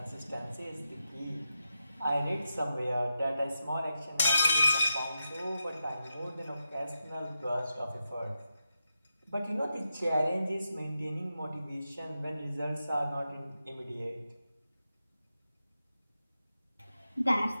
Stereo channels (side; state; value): both; inverted; correlation -0.88